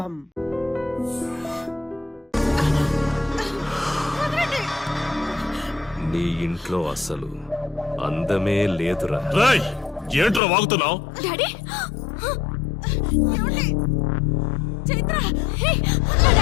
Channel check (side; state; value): right; drops out; at 10.4 s